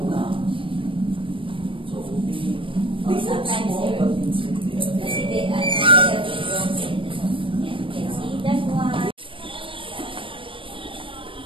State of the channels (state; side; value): late; left; 0.25 ms